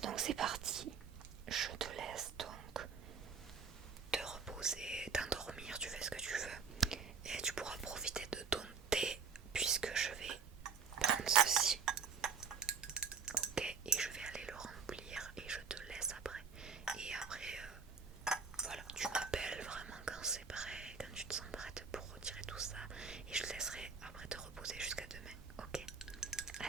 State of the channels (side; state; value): left; quieter; 5.7 dB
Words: c'est parti. Je te laisse donc te reposer